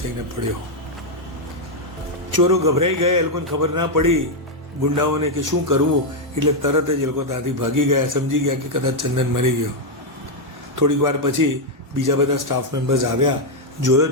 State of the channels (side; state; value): both; normal; correlation 0.00